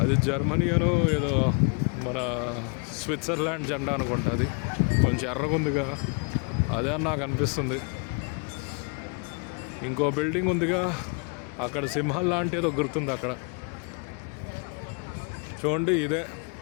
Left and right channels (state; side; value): quieter; right; 37.7 dB